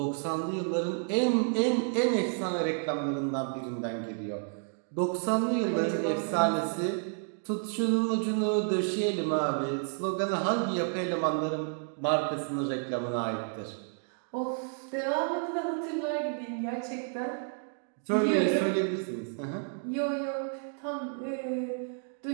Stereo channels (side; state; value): left; silent; 55 dB below the other